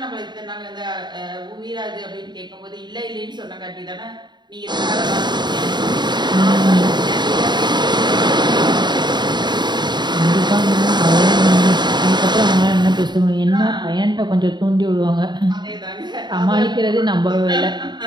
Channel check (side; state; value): left; late; 0.21 ms